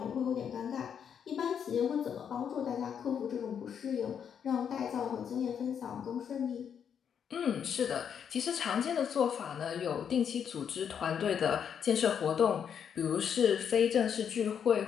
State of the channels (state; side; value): quieter; right; 7.9 dB